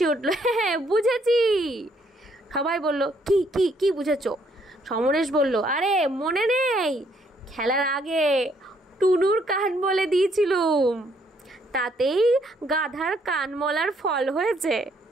উঠল, হ্যাঁ বুঝেছি। সবাই বলল, কি কি কি বুঝেছ? সমরেশ বলল, আরে মনে নেই, খেলার আগে টুনুর কান বলে দিয়েছিলুম, তাতেই গাধার কান মলার ফল হয়েছে।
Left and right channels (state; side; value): normal; both; correlation 0.69